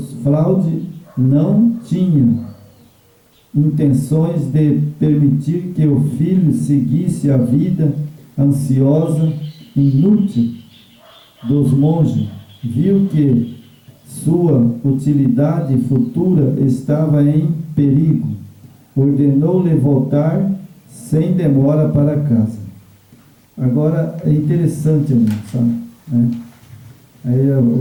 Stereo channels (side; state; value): both; identical; correlation 1.00